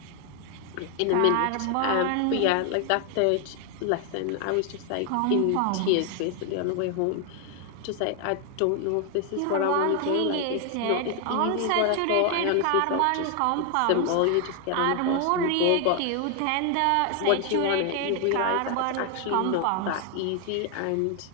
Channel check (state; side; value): different; both; correlation 0.01